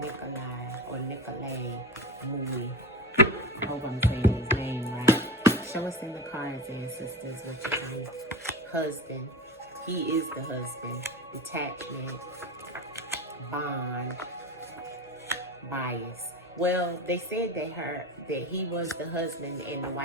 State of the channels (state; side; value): normal; both; correlation 0.26